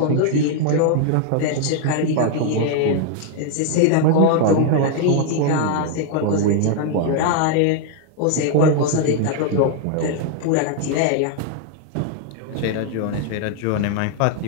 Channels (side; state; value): both; different; correlation 0.00